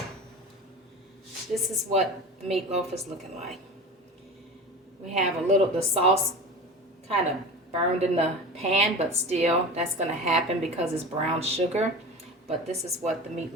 this is what the meatloaf is looking like. We have a little, the sauce kind of burned in the pan, but still that's going to happen because it's brown sugar. But this is what the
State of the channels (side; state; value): both; normal; correlation 0.33